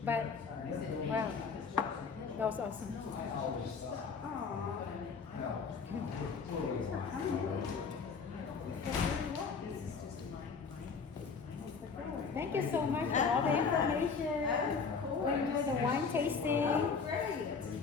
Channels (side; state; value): right; quieter; 5.4 dB